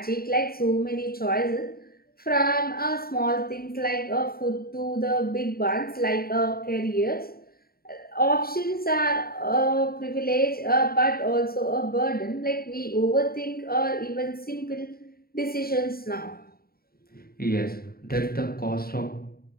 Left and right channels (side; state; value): right; late; 0.44 ms